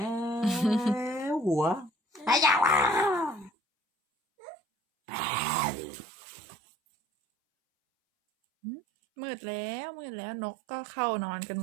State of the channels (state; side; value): drops out; left; at 3.5 s